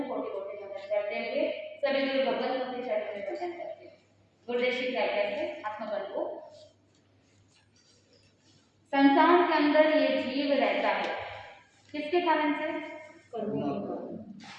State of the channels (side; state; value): both; identical; correlation 1.00